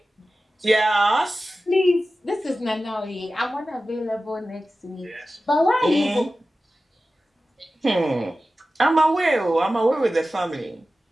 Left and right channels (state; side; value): normal; both; correlation 0.95